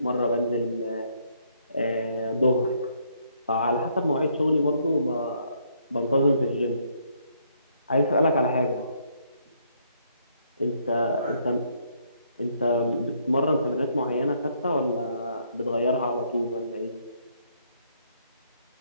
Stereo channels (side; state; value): both; inverted; correlation -0.70